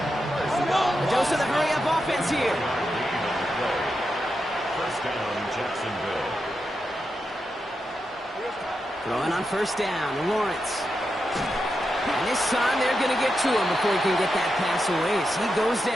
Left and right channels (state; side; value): normal; both; correlation 0.87